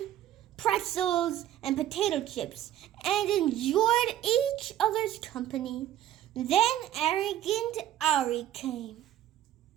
pretzels, and potato chips, and enjoyed each other's company. Then Arrogant Ari came.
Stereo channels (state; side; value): quieter; left; 12.3 dB